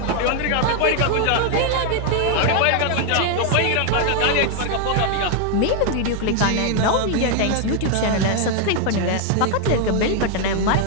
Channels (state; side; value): different; both; correlation 0.00